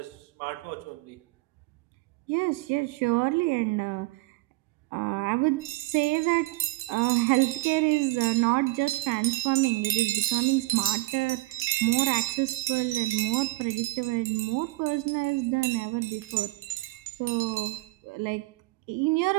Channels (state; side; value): quieter; left; 20.6 dB